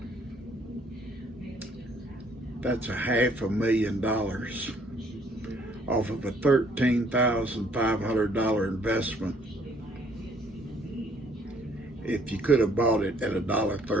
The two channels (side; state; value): both; normal; correlation 0.63